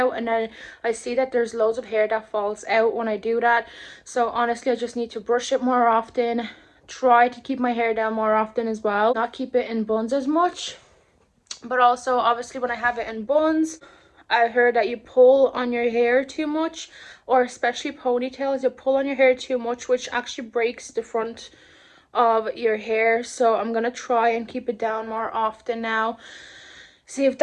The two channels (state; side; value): identical; both; correlation 1.00